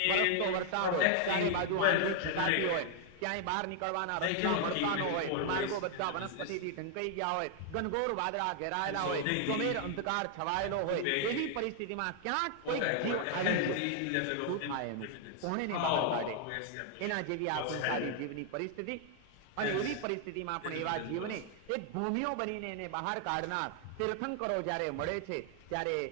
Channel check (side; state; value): both; different; correlation 0.00